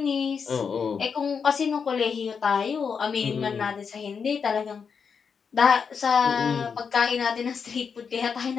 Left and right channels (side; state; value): right; quieter; 6.1 dB